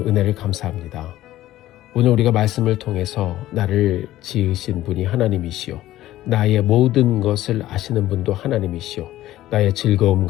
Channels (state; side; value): quieter; right; 14.7 dB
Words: 감사합니다. 오늘 우리가 말씀을 통해서 나를 지으신 분이 하나님이시오. 나의 모든 것을 아시는 분도 하나님이시오. 나의